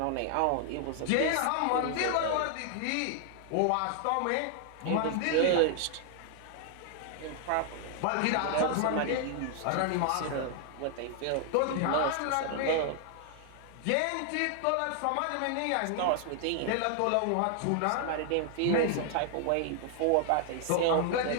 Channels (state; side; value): different; both; correlation 0.00